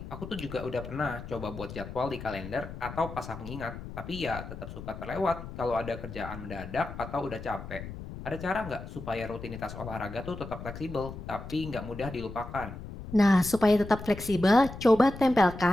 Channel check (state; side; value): noise; left; rumble, 11 dB below the sound